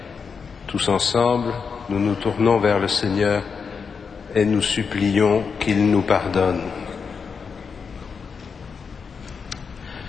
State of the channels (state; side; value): quieter; right; 5.7 dB